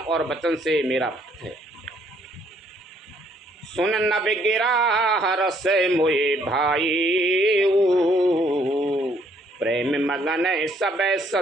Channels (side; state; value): both; normal; correlation 0.66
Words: वचन से मेरा भक्त है। सुन न बिगिरा हरस मोए भाई, प्रेम मगन सब